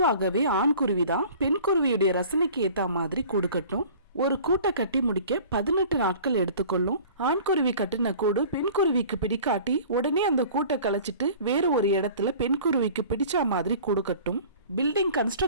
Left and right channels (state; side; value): inverted; both; correlation -0.45